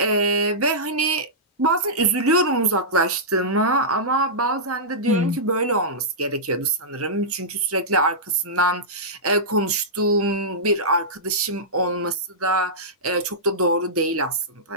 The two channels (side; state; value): both; normal; correlation -0.14